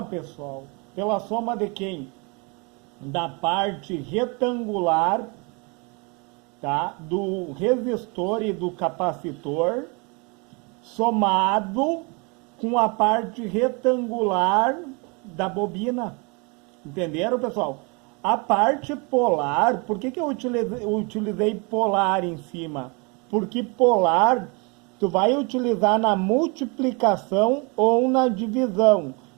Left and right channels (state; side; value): quieter; left; 30.9 dB